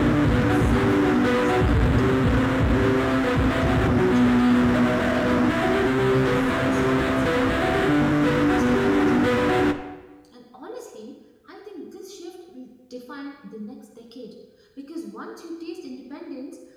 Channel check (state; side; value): identical; both; correlation 1.00